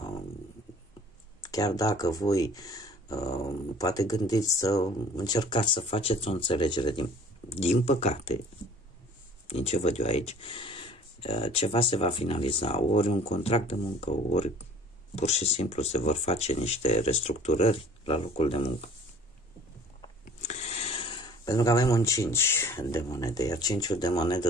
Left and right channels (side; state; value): both; normal; correlation 0.50